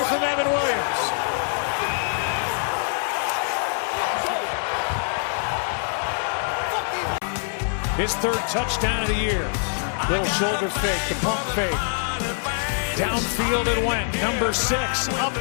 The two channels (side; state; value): right; silent; 62 dB below the other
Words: from Evan Williams. His 3rd touchdown of the year. Little shoulder fake, the pump fake. Downfield it went. Number 6 up